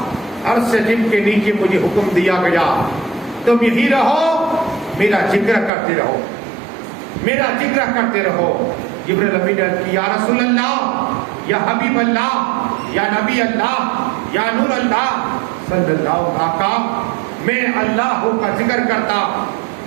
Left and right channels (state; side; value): drops out; left; at 5.7 s